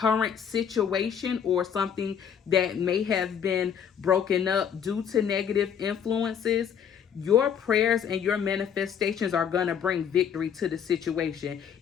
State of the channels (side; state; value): right; quieter; 8.0 dB